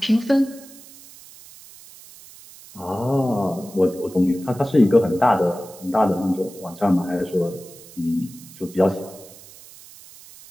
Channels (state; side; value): noise; right; hiss, 20 dB below the sound